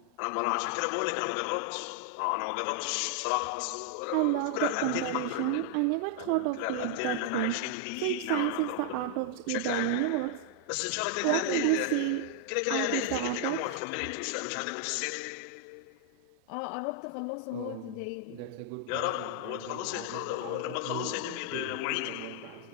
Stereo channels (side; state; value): both; different; correlation 0.00